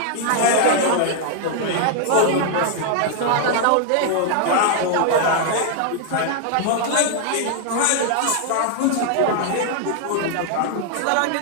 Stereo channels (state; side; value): different; both; correlation 0.00